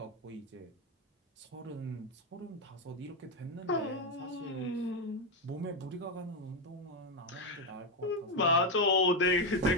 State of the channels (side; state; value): both; normal; correlation 0.07